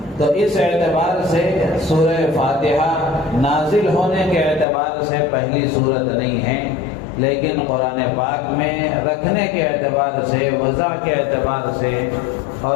تو اس اعتبار سے سورہ فاتحہ نازل ہونے کے اعتبار سے پہلی سورت نہیں ہے، لیکن قرآن پاک میں رکھنے کے اعتبار سے، وضع کے اعتبار سے،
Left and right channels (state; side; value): drops out; right; at 4.7 s